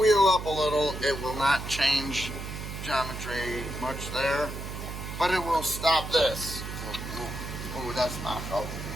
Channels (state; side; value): noise; right; hum, 7 dB below the sound